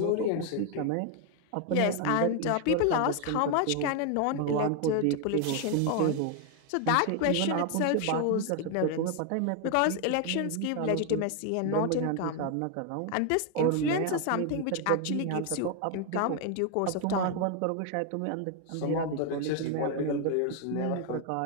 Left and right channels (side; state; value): both; different; correlation 0.01